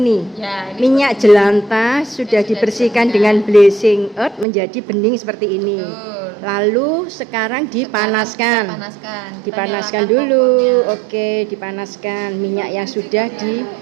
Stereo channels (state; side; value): drops out; left; at 4.5 s